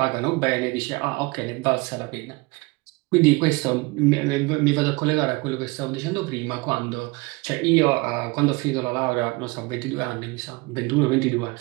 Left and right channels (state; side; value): quieter; left; 25.2 dB